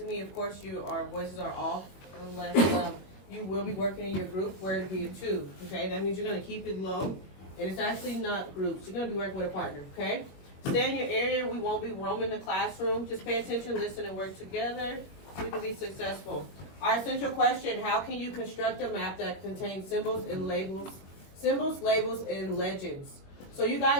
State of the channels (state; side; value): late; right; 21 ms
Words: me, of course, our voices are off unless you will be working in your group where it'll be a two. Okay, that means you're going to keep it low, and it's actually not groups. You're going to be working with a partner. Okay, stay in your area. We won't be roaming the classroom. Just pay attention, listen, and work together. We can be successful. Our essential question, how can you construct a map that contains symbols, labels, and legends? So you